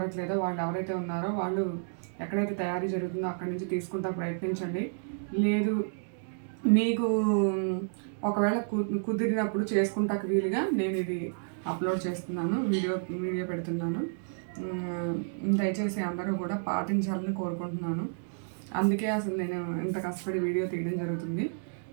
వాళ్ళు ఎవరైతే ఉన్నారో వాళ్ళు ఎక్కడైతే తయారీ జరుగుతుందో అక్కడి నుంచి తీసుకుంటా ప్రయత్నించండి. లేదు మీకు ఒకవేళ కుదిరినప్పుడు చేసుకుంటాకు వీలుగా నేను ఇది అప్లోడ్ చేస్తున్నాను, వీడియో పెడుతున్నాను. దయచేసి అందరూ కూడా పాటించాలని కోరుకుంటున్నాను. అందుకే అసలు నేను ఇంత కష్టపడి వీడియో తీయడం జరుగుతుంది.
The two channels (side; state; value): left; silent; digital silence